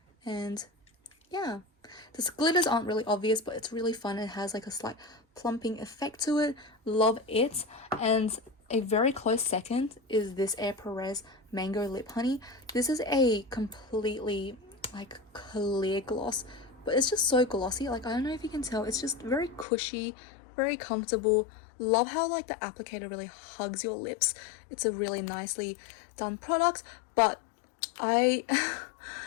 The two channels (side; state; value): right; drops out; at 19.7 s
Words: And yeah, the glitters aren't really obvious, but it's really fun. It has like a slight plumping effect to it. Love it. And a very close second is this Air Perez Mango Lip Honey. This is a completely like clear gloss, but it's just so glossy. Like, I don't know if you can tell, it's just very cushy, very comfortable. Love how like the applicator really hugs your lips. It's a really nicely done product, but I